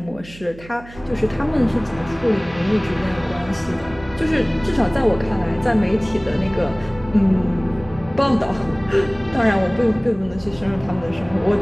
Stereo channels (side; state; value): right; noise; hum, 19 dB below the sound